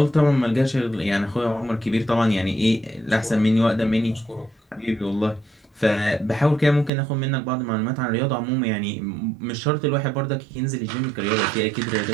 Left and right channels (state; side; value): drops out; left; at 6.9 s